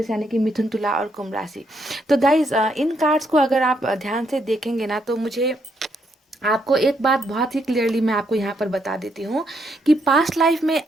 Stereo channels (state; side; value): normal; both; correlation 0.75